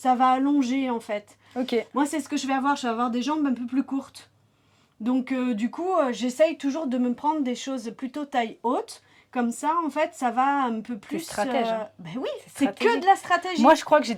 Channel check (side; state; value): both; identical; correlation 1.00